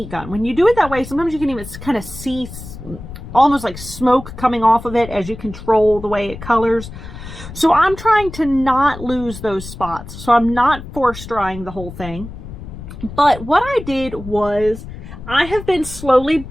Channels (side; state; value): left; noise; rumble, 12 dB below the sound